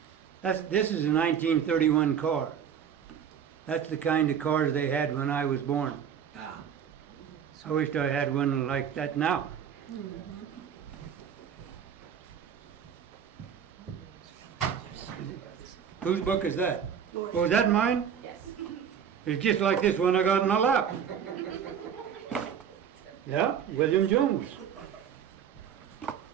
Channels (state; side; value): quieter; left; 8.1 dB